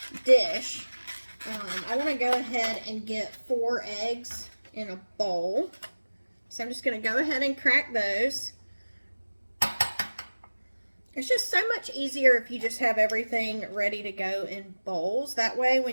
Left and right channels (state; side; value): inverted; both; correlation -1.00